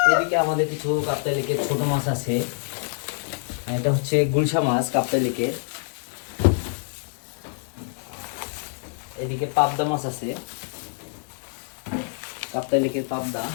এদিকে আমাদের কিছু কাপ্তাই লেকের ছোট মাছ আছে। এটা হচ্ছে গুলশা মাছ কাপ্তাই লেকের। এদিকে পাবদা মাছ আছে, কাপ্তাই লেকের পাবদা।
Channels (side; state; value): right; silent; 61 dB below the other